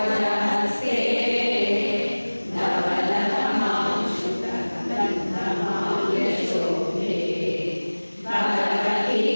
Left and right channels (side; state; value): both; inverted; correlation -1.00